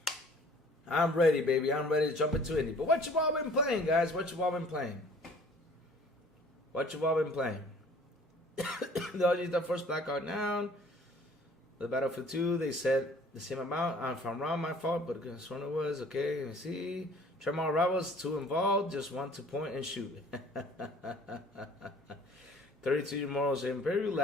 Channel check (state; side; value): normal; both; correlation 0.52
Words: I'm ready, baby. I'm ready to jump into Indy. But what you all been playing, guys? What you all been playing? What you all been playing? The first Blackout down. The Battlefield 2, they said the same amount. If I'm wrong, my fault, but this one it was. Okay, let me see. Tremor Rivals, 2 involved, just 1 to point and shoot. 32 Morals Imperial,